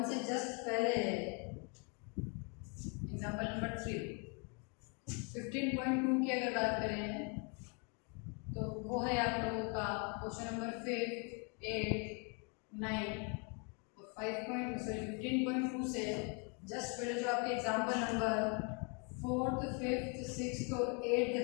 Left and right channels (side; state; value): right; quieter; 35.7 dB